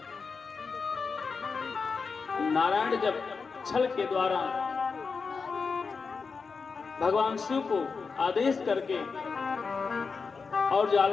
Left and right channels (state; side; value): quieter; right; 5.0 dB